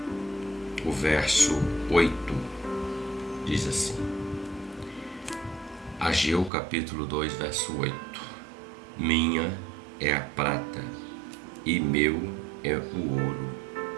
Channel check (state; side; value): drops out; left; at 6.5 s